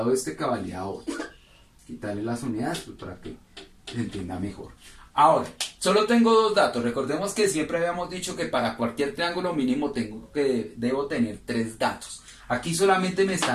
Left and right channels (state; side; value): identical; both; correlation 1.00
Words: este que valía 8. Quitarle las unidades pues, para que se entienda mejor. Ahora, solo tengo dos datos. Recordemos que siempre habíamos dicho que para cualquier triángulo mínimo debo tener 3 datos. Aquí solamente me